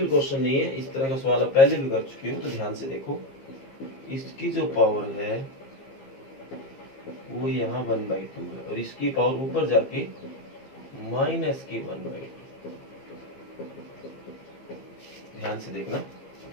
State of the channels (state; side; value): late; right; 15 ms